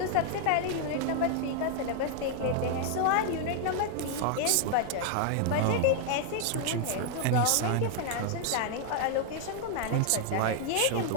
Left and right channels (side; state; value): both; different; correlation 0.00